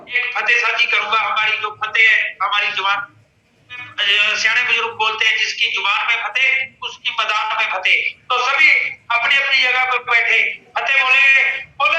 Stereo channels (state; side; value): identical; both; correlation 1.00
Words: एक फतेह साझी करूंगा। हमारी जो फतेह है, हमारी जुबान, सियाने बुजुर्ग बोलते हैं, जिसकी जुबान में फतेह उसकी मैदान में फतेह। तो सभी अपनी अपनी जगह पर बैठे फतेह बोलेंगे,